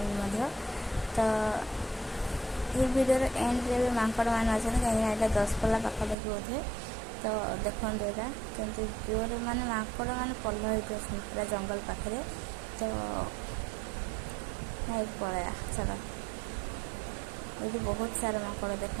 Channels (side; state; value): left; drops out; at 6.2 s